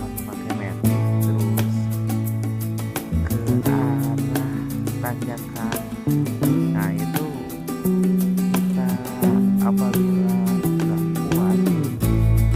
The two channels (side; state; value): both; identical; correlation 1.00